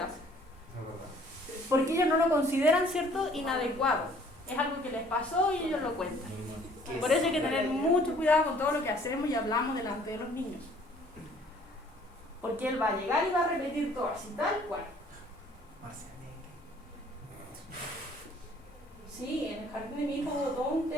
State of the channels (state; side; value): normal; both; correlation 0.57